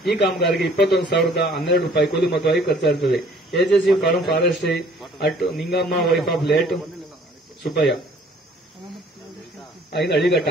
ಈ ಕಾಮಗಾರಿಗೆ 21,012 ರೂಪಾಯಿ ಕೂಲಿ ಮೊತ್ತವಾಗಿ ಖರ್ಚಾಗುತ್ತದೆ. AJC farm forestry at Ningamma wife of late Subbayya in Alighatta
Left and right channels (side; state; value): both; normal; correlation 0.56